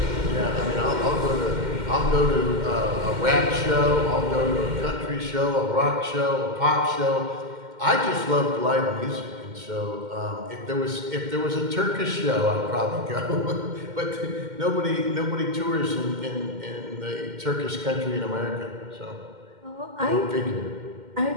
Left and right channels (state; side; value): late; left; 2.1 ms